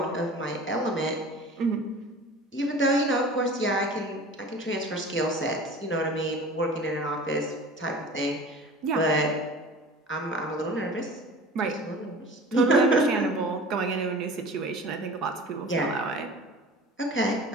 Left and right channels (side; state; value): both; normal; correlation 0.40